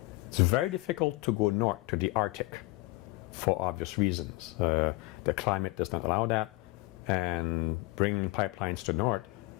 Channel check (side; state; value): right; quieter; 22.4 dB